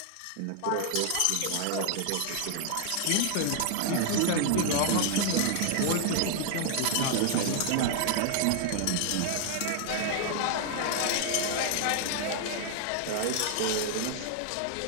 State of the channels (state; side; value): different; both; correlation 0.00